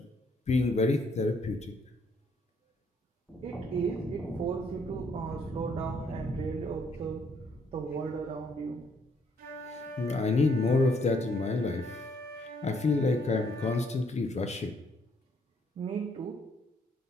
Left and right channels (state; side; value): normal; both; correlation 0.68